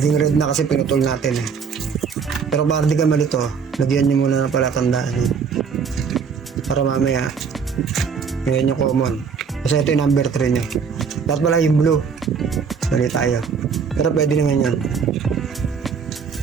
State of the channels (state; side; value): quieter; left; 6.1 dB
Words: red na kasi pinutol natin Pero para di ka malito, lagyan nyo muna ng palatandaan. Para mamaya, yan yung common. Kasi ito yung number 3 nyo. Dapat pala yung blue. Sali tayo. Pero pwede naman yan.